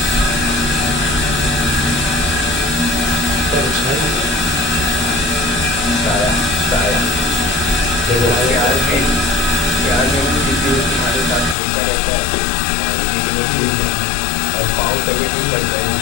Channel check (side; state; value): right; drops out; at 11.6 s